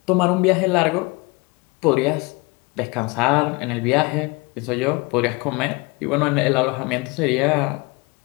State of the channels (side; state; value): right; quieter; 26.1 dB